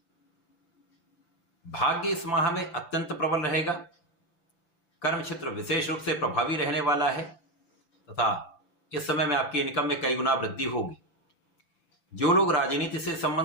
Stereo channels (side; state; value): right; late; 5.9 ms